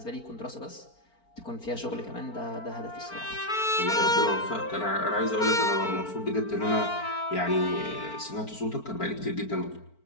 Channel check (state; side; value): late; right; 4.4 ms